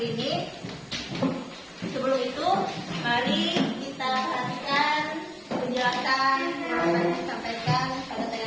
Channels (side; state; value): both; identical; correlation 1.00